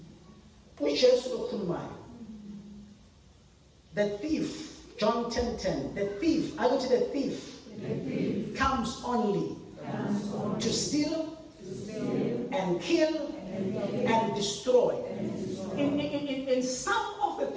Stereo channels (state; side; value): identical; both; correlation 1.00